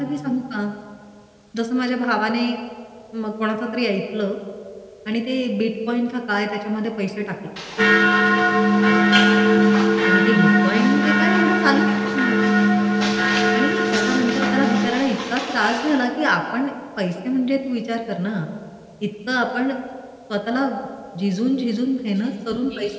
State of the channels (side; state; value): both; identical; correlation 1.00